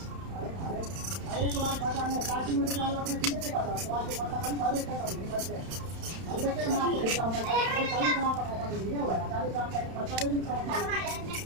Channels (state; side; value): late; left; 31 ms